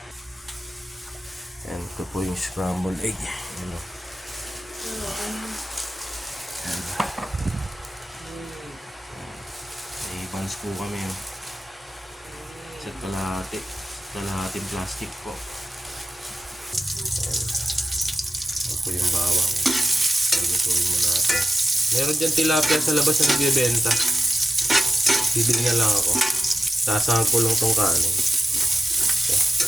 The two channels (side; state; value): both; normal; correlation 0.93